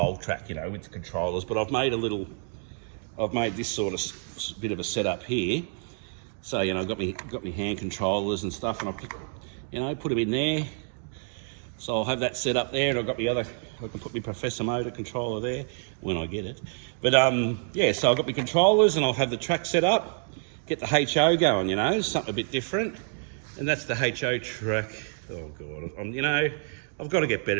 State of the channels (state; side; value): silent; left; 59 dB below the other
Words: track, you know, with the controllers. But I've made this sort of bit of a setup here. So, you know, I've got me hand controllers and stuff, and I'll put them in there. So I'll have that set up there, and I've got I can put my Professor Motor controller there when I get it. But yeah, so I've got my controllers, and I'll have the track set up, get the HO going, you know, something a bit different. And that's the HO track. Oh God, you know, I've got to get